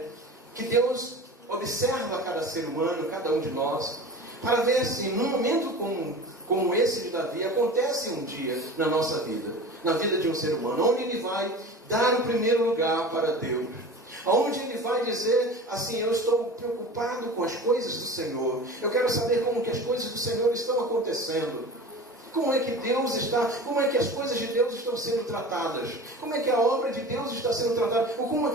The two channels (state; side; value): normal; both; correlation 0.35